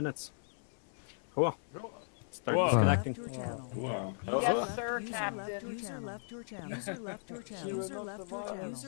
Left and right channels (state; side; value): silent; right; 53 dB below the other